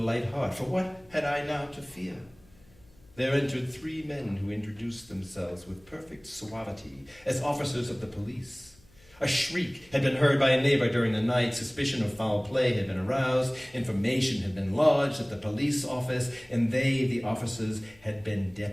heart, for what had I now to fear? There entered 3 men who introduced themselves with perfect suavity as officers of the police. A shriek had been heard by a neighbor during the night. Suspicion of foul play had been aroused. Information had been lodged at the police office, and they, the officers, had been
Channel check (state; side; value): noise; left; hum, 28 dB below the sound